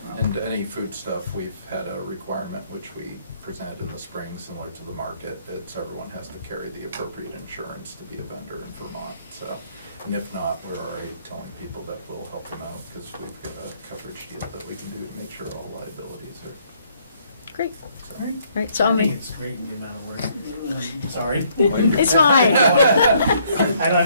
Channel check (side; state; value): both; inverted; correlation -0.67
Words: And any food stuff, we've had a requirement which we presented in the spring, similar to the market, that everyone has to carry the appropriate insurance to be a vendor in Vermont. So, and if not, we're already telling people that we'll help them out because we've got a coverage deal that we can do to make sure all liabilities are. Great, So. right, so I'll I think make, it's great in the amount of work. I'm sorry. it's fine. I